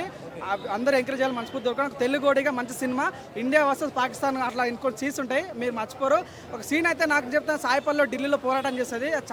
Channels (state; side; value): identical; both; correlation 1.00